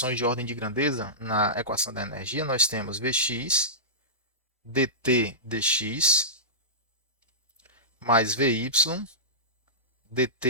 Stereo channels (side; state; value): both; normal; correlation -0.17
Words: de ordem de grandeza na equação da energia, nós temos Vx dt dx mais Vy